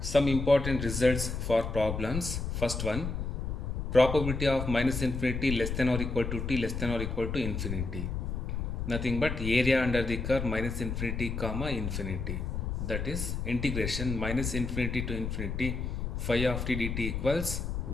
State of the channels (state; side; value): noise; left; rumble, 3 dB below the sound